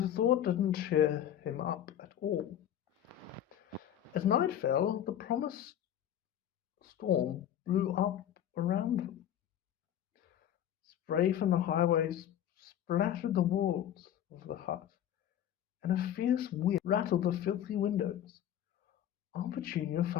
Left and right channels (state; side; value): quieter; right; 10.6 dB